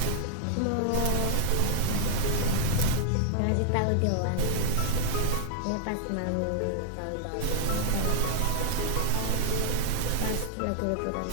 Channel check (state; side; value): different; both; correlation 0.00